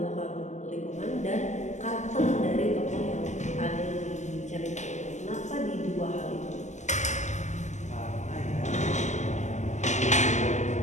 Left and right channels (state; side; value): late; right; 0.34 ms